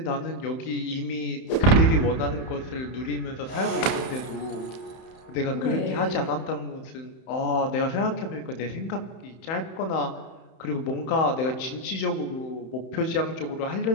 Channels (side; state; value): right; late; 31 ms